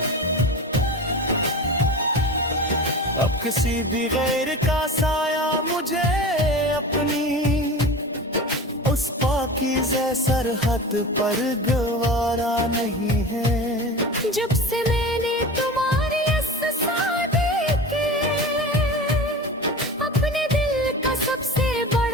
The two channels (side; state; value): both; normal; correlation 0.32